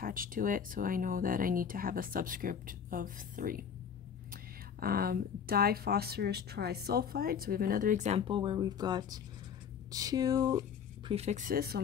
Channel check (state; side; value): quieter; right; 7.5 dB